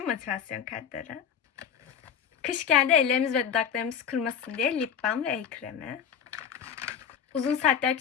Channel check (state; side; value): quieter; right; 7.8 dB